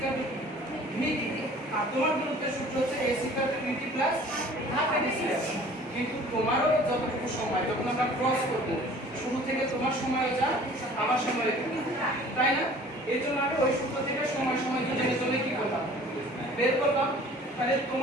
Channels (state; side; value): normal; both; correlation 0.49